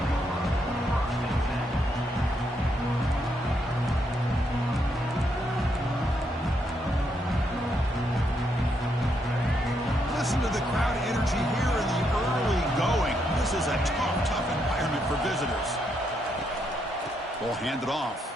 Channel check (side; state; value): both; normal; correlation 0.77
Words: Listen to the crowd energy here in the early going. This is a tough environment for visitors. Ball handed off.